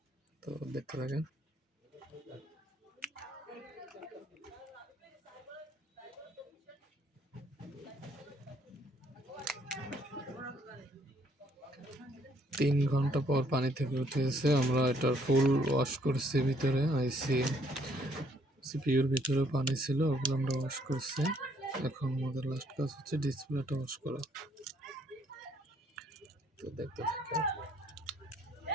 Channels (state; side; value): normal; both; correlation 0.67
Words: তো দেখতে থাকেন। তিন ঘন্টা পর পানি থেকে উঠেছে। আমরা এটার ফুল ওয়াশ করছি, ভিতরে আইসি সিপিইউর ভিতরে পানি ছিল, ওগুলো আমরা ওয়াশ করছি। এখন আমাদের লাস্ট কাজ হচ্ছে ডিসপ্লেটা ওয়াশ করা। তো দেখতে থাকেন।